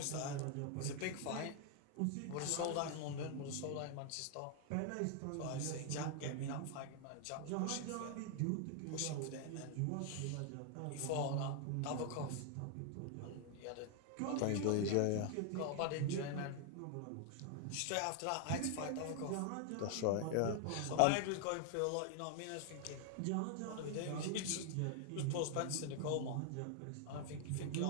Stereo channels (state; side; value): different; both; correlation 0.00